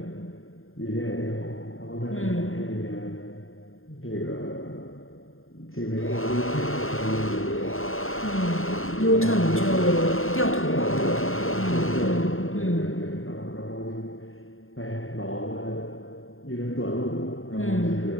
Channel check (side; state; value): right; late; 0.60 ms